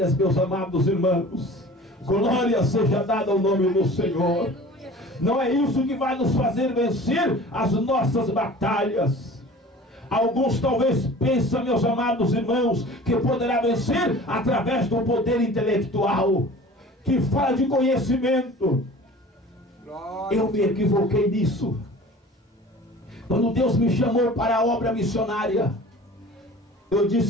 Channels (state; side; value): normal; both; correlation 0.43